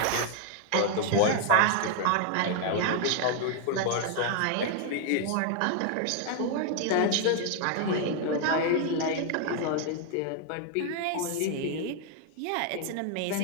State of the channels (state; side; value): different; both; correlation 0.00